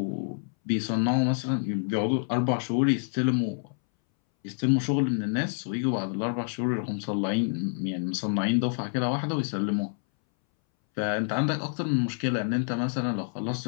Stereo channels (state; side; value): silent; right; 60 dB below the other